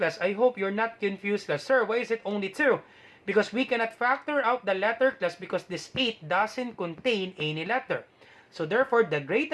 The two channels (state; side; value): identical; both; correlation 1.00